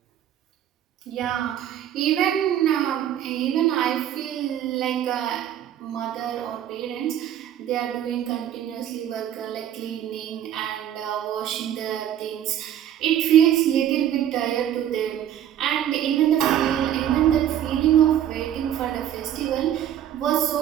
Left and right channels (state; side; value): quieter; left; 10.7 dB